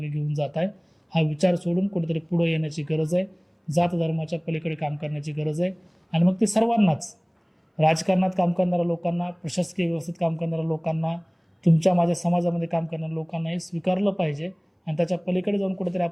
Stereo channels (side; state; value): both; identical; correlation 1.00